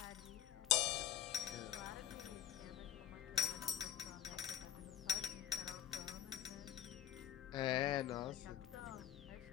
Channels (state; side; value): quieter; right; 11.3 dB